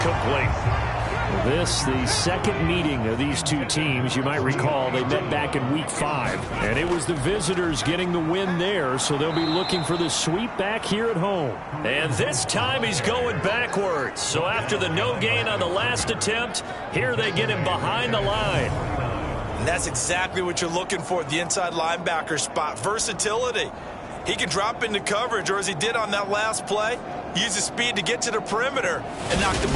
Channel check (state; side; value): identical; both; correlation 1.00